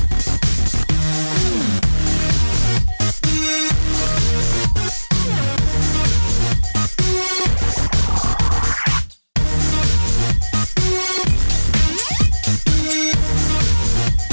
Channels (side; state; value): both; inverted; correlation -1.00